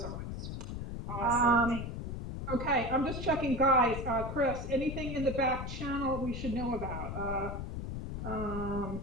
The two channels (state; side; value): noise; left; rumble, 5 dB below the sound